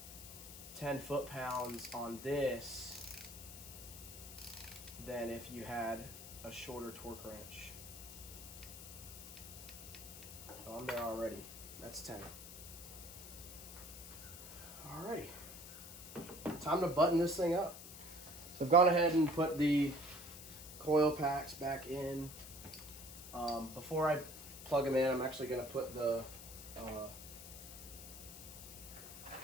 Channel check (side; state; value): left; noise; hiss, 12 dB below the sound